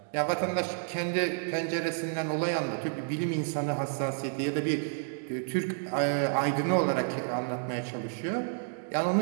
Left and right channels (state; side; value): silent; left; digital silence